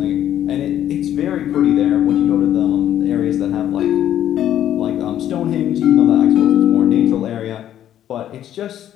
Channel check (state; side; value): quieter; right; 11.2 dB